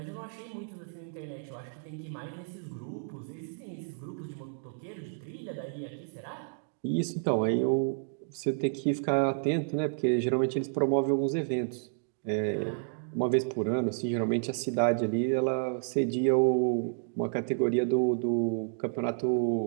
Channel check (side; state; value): left; silent; digital silence